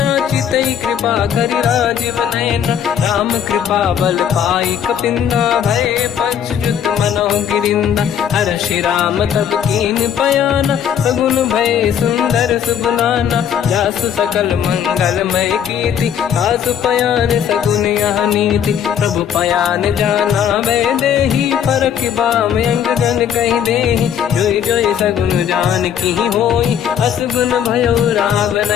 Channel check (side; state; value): right; quieter; 8.8 dB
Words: चितई कृपा करि राजीव नयना। राम कृपा बल पाई कपिंदा, भय पश्चात मनोह गिरिंदा। हर्षि राम तब कीन पयाना, सगुन भय सुंदर सुगुनाना। जासु सकल मंगलमय कीर्ति, आसु पयान सगुन यह नीति। प्रभु पयान जाना वै देहि, परख बाम अंग गन कहि देहि। जोई जोई सगुन जान की होई, असगुन भयो राव